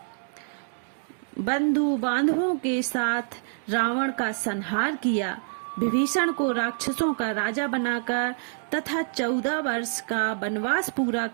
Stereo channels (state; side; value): silent; left; digital silence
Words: बंधु बांधवों के साथ रावण का संहार किया। विभीषण को राक्षसों का राजा बनाकर तथा 14 वर्ष का वनवास पूरा